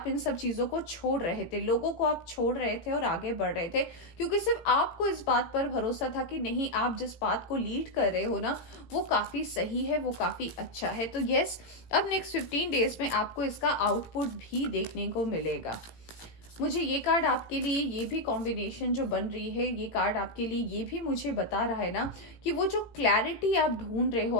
इन सब चीज़ों को छोड़ रहे थे, लोगों को आप छोड़ रहे थे और आगे बढ़ रहे थे, क्योंकि सिर्फ आपको इस बात पर भरोसा था कि नहीं, आप जिस बात को लीड कर रहे हो ना वो काफ़ी सही है, वो काफ़ी अच्छा है। तो यस, अब नेक्स्ट 15 डेज में आपको इसका आउटपुट भी देखने को मिलेगा। मुझे ये कार्ड आपके लिए, ये भी कॉम्बिनेशन जो बन रही है, ये कार्ड आपके लिए ये भी मुझे बता रहा है ना कि वो जो क्लैरिटी आप ढूंढ रहे हो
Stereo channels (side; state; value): right; late; 17 ms